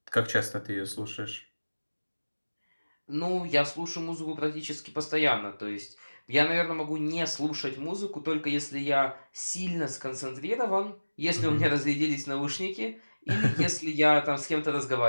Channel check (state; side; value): inverted; both; correlation -1.00